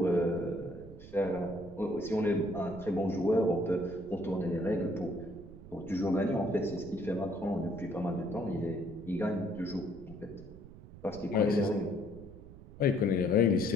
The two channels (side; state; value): right; noise; rumble, 17 dB below the sound